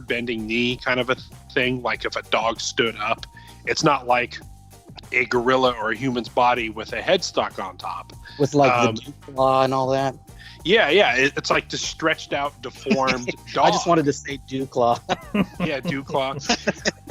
bending knee kind of a thing, like if a dog stood up. It's not like a gorilla or a human's body with a headstock on top. With like the dew claw and all that. Yeah. It's like the stretched out, deformed dog. I just wanted to say dew claw. Yeah, dew claw.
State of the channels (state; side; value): identical; both; correlation 1.00